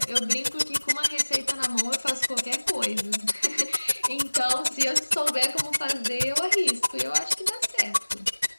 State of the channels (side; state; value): both; inverted; correlation -1.00